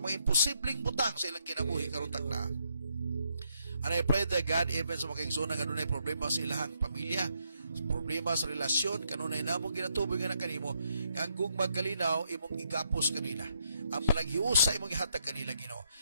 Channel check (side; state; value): both; inverted; correlation -0.75